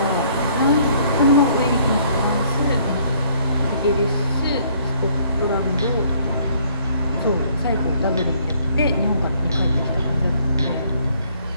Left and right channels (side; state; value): both; inverted; correlation -0.63